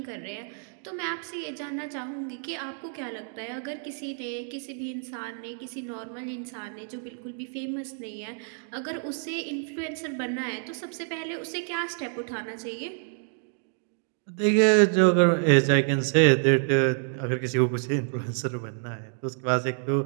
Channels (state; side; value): silent; left; 59 dB below the other